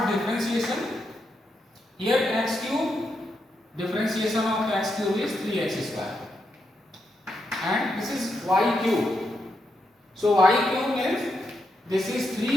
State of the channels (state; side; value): normal; both; correlation 0.83